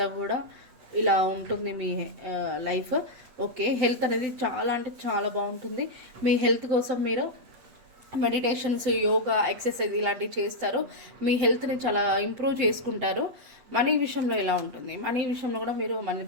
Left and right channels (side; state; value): left; late; 8.2 ms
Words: కూడా ఇలా ఉంటుంది మీ లైఫ్. ఓకే, హెల్త్ అనేది చాలా అంటే చాలా బాగుంటుంది. మీ హెల్త్ కోసం మీరు మెడిటేషన్స్, యోగా, ఎక్సర్సైజ్ ఇలాంటివి చేస్తారు. మీ హెల్త్ని చాలా ఇంప్రూవ్ చేసుకుంటారు. మనీ విషయంలో ఎలా ఉంటుంది? మనీ విషయంలో కూడా మీరు మనీ